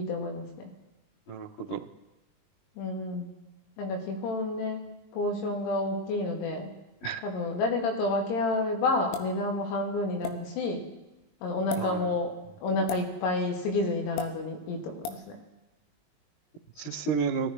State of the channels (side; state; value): right; late; 20 ms